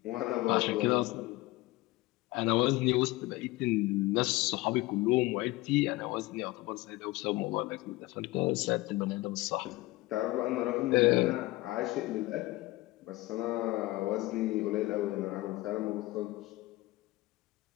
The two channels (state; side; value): quieter; right; 19.7 dB